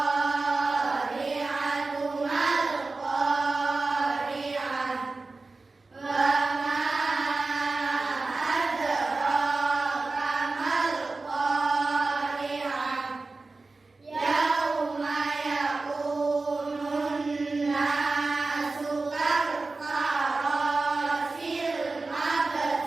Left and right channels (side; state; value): left; quieter; 3.6 dB